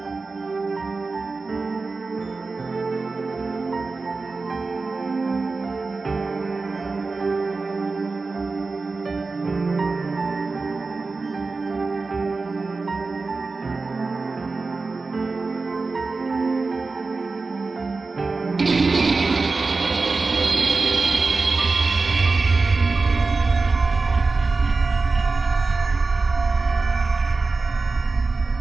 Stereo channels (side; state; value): left; quieter; 3.9 dB